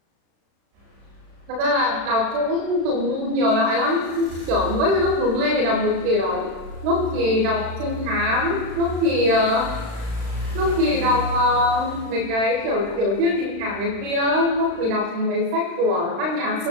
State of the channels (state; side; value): late; left; 36 ms